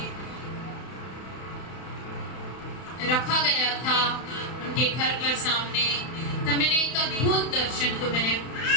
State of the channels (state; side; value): late; right; 31 ms